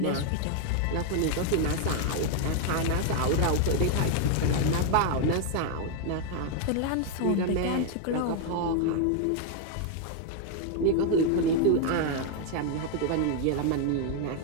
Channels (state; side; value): different; both; correlation 0.00